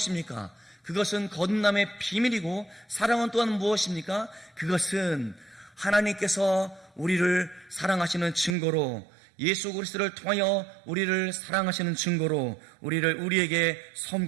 그것은 거듭남의 비밀이고, 사랑은 또한 무엇입니까? 그것은 하나님께서 우리를 사랑하시는 증거로, 예수 그리스도를 통하여 우리를 사랑하시는 증거로 우리에게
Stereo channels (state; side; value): drops out; left; at 8.6 s